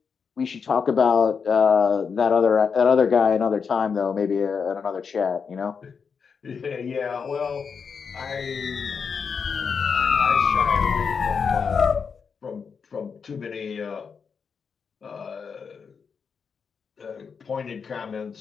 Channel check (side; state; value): right; quieter; 6.0 dB